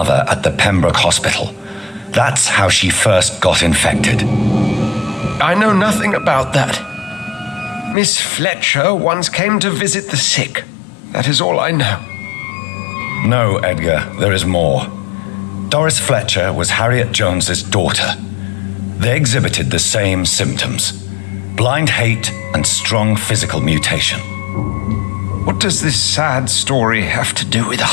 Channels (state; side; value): drops out; right; at 8.0 s